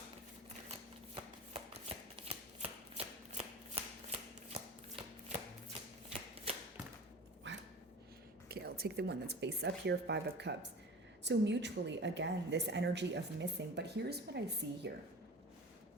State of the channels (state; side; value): normal; both; correlation 0.36